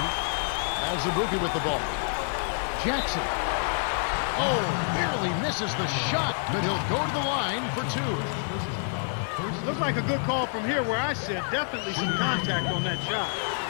Azubuike with the ball. Jackson. Oh, barely misses the shot, but he'll go to the line for two. Looks like a good call from here where I sit. Definitely some contact on that shot.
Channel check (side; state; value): right; silent; 60 dB below the other